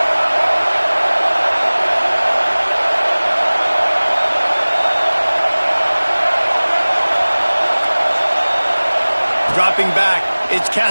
Dropping back, it's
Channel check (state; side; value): inverted; both; correlation -1.00